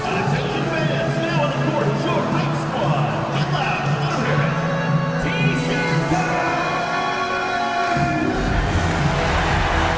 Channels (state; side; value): identical; both; correlation 1.00